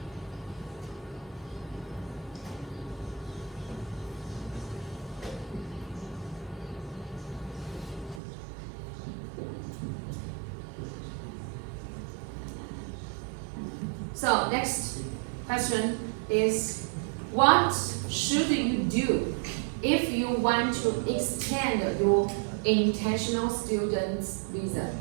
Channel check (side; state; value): left; drops out; at 8.2 s